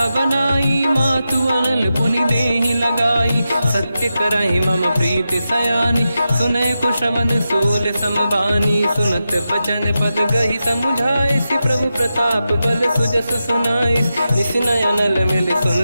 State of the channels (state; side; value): inverted; both; correlation -0.89